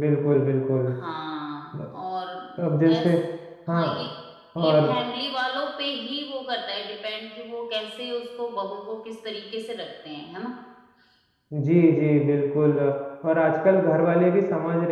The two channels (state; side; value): identical; both; correlation 1.00